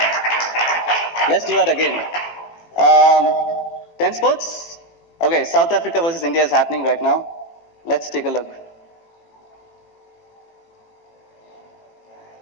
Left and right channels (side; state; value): right; late; 18 ms